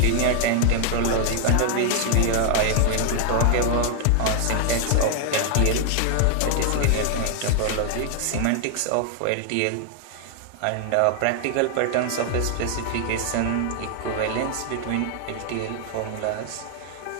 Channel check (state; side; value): different; both; correlation 0.00